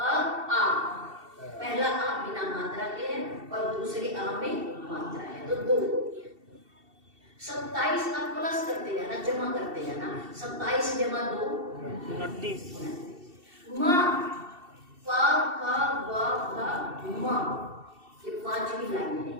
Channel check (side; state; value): left; late; 2.7 ms